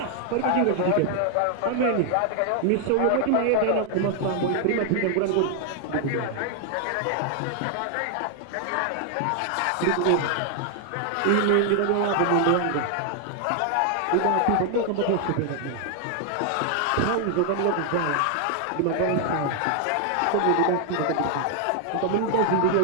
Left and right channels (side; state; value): both; different; correlation 0.00